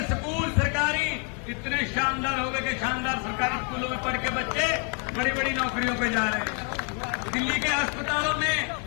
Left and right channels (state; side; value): quieter; right; 37.2 dB